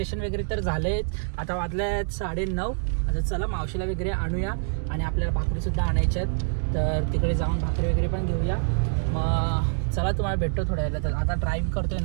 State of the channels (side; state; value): left; silent; digital silence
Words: वगैरे तर झालेच, आता वाजले 9:30. आता चला मावशीला वगैरे आणूया आणि आपल्याला भाकरी सुद्धा आणायच्यात, तर तिकडे जाऊन भाकरी वगैरे पण घेऊया. मग चला तुम्हाला भेटतो थोड्या वेळेला. तर आता ड्राईव्ह करतोय